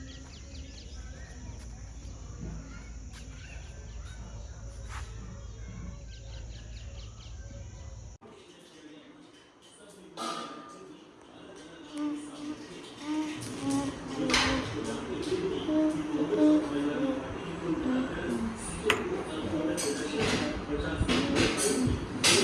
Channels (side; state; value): both; identical; correlation 1.00